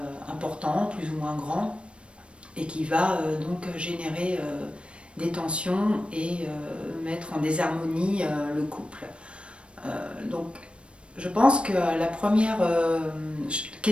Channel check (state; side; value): late; left; 0.059 ms